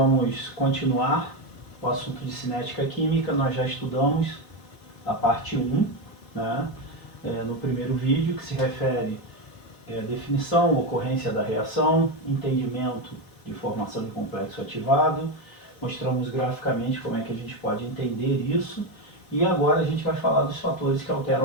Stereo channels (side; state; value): right; late; 4.0 ms